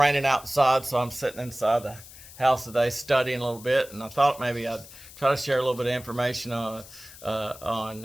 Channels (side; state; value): left; noise; hiss, 18 dB below the sound